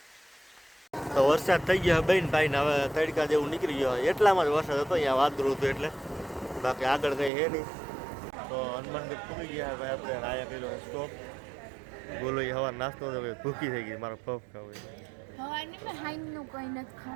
તો વરસાદ થઈ ગયો બેન ભાઈ ને હવે તડકા જેવું નીકળી ગયો. એટલામાં જ વરસાદ હતો અહીંયા વાદળું હતું એટલે, બાકી આગળ કંઈ હે નહીં. તો હનુમાનગઢ પૂરી ગયા ભાઈ આપણે. આયા કર્યો સ્ટોપ. બોલો એ હવા નાસ્તો તો ભૂખી થઈ ગઈ. મારો પફ ખાવું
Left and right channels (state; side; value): drops out; left; at 7.3 s